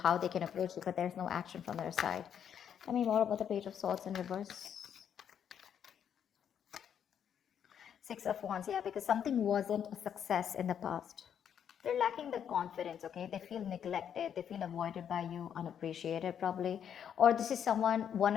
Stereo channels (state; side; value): quieter; right; 8.6 dB